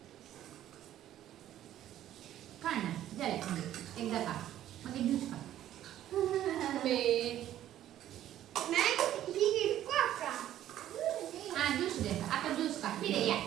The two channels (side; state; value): left; quieter; 12.2 dB